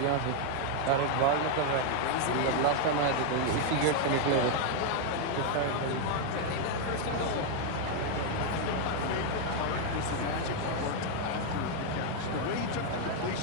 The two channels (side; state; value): both; different; correlation 0.00